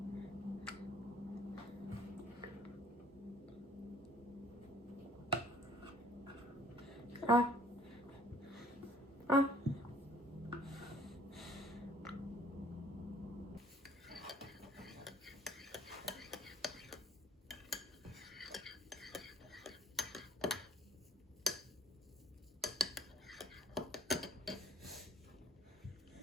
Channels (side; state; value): both; normal; correlation 0.57